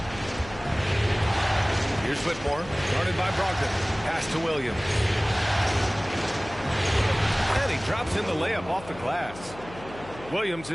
Here's Whitmore, guarded by Brogdon. Pass to Williams. And he drops in the layup off the glass. Williams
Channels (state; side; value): noise; left; hum, 17 dB below the sound